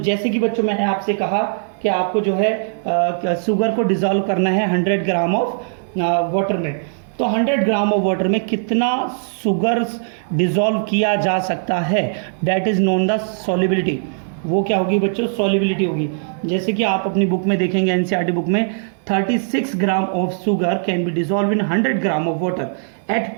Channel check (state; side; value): silent; left; 66 dB below the other